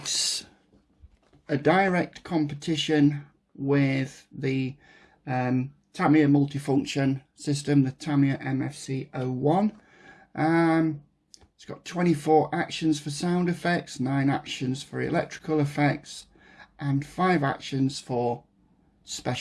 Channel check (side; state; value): both; identical; correlation 1.00